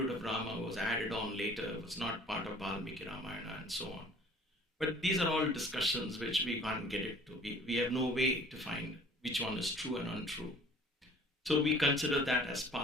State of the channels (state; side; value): normal; both; correlation 0.51